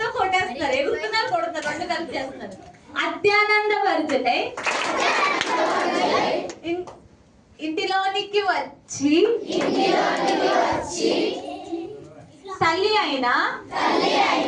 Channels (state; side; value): identical; both; correlation 1.00